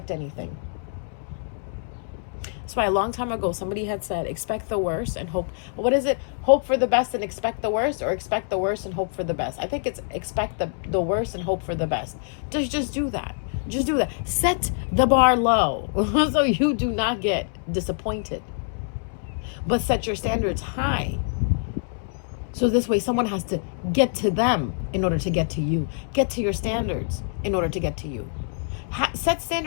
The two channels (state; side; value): silent; right; 62 dB below the other